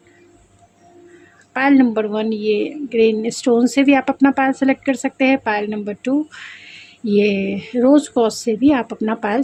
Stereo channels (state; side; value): identical; both; correlation 1.00